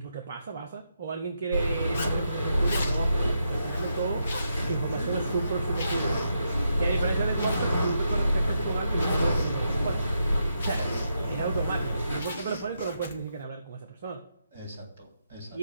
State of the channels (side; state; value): both; inverted; correlation -0.82